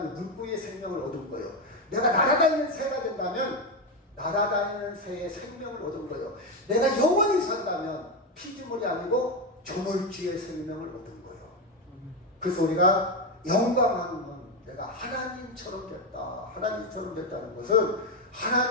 물고기의 생명을 얻은 거예요. 내가 날아다니는 새가 된다면 날아다니는 새의 생명을 얻은 거예요. 내가 영원히 산다면 피조물이 아니고 조물주의 생명을 얻은 거예요. 그래서 우리가 영광하는 건 내가 하나님처럼 됐다. 하나님처럼 됐다는 것은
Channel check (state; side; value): normal; both; correlation 0.11